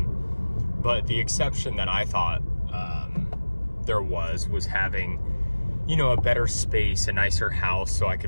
But the exception that I thought there was having a better space, a nicer house, so I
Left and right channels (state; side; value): inverted; both; correlation -1.00